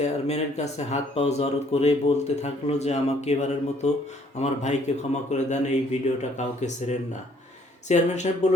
কাছে হাত পাও জড়ো করে বলতে থাকলো যে আমাকে এবারের মতো আমার ভাইকে ক্ষমা করে দেন, এই ভিডিওটা কাউকে ছেড়েন না। চেয়ারম্যান সাহেব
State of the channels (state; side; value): normal; both; correlation 0.63